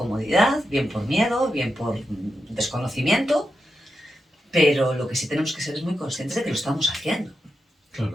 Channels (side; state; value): both; normal; correlation 0.87